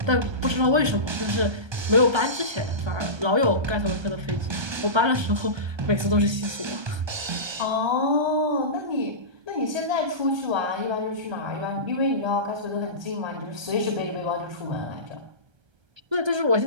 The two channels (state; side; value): late; left; 1.3 ms